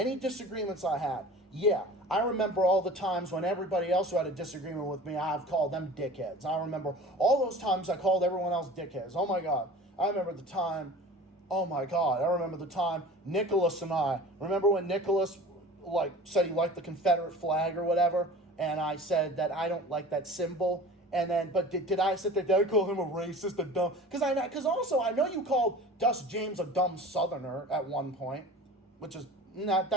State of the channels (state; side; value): normal; both; correlation 0.40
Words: disagreements I had. Yeah, I remember all the times when everybody else who had a disagreement with me, I've called them dickheads. I remember all those times I called everyone else dickheads. Oh my God. I remember the time Nicholas and I, remember when Nicholas said he liked the Confederate flag or whatever, and I said that I don't like that symbol. And then, but did I sit there? Did I call him a racist, a dumb? Because also I know you called Dust James a dumb Southerner at one point, which is not.